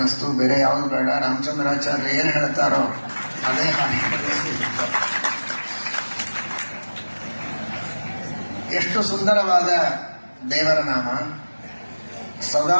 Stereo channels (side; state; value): both; inverted; correlation -1.00